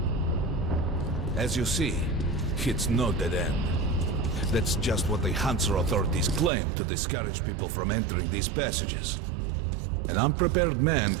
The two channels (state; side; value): drops out; left; at 6.5 s